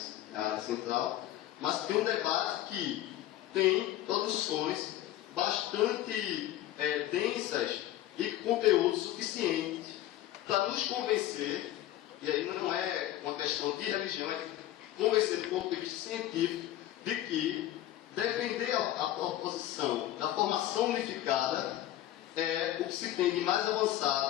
a área central, mas tem um debate que tem produções bastante densas e conteúdo suficiente para nos convencer, e aí não é uma questão de religião, é de convencer do ponto de vista científico de que defender a proposição da formação unificada é o que se tem de mais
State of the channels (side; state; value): right; quieter; 13.7 dB